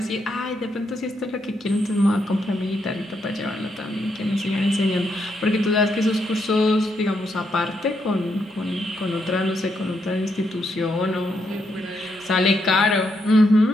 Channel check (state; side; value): normal; both; correlation 0.79